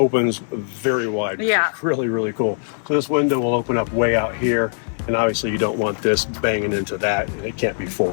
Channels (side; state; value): right; silent; 56 dB below the other